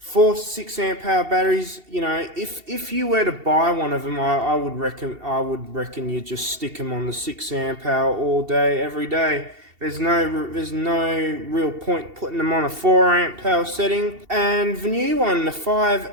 to 6 amp hour batteries, if you were to buy one of them, I would reckon you just stick them on the 6 amp hour all day, every day. There's no real point putting them on a 4 amp power setting. And the new one, the 5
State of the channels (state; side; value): late; left; 2.7 ms